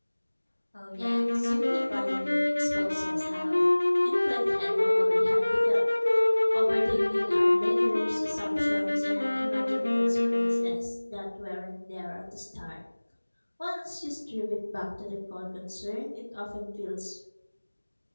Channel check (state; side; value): inverted; both; correlation -1.00